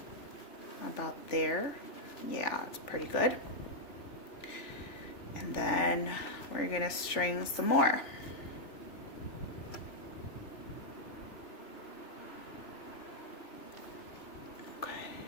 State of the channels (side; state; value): right; late; 3.4 ms